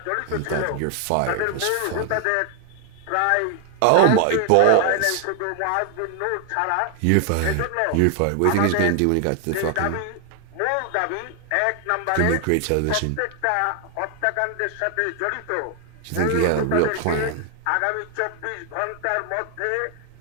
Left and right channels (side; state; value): both; different; correlation 0.00